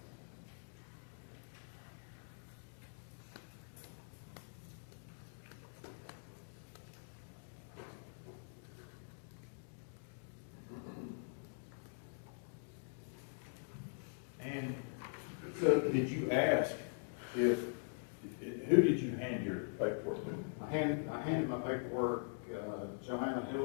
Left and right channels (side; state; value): right; silent; digital silence